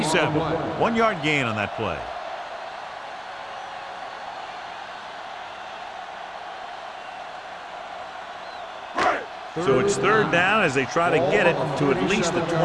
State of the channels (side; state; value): both; identical; correlation 1.00